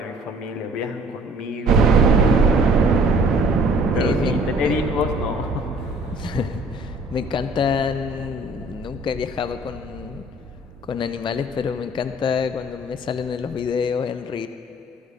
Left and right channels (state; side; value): normal; both; correlation 0.54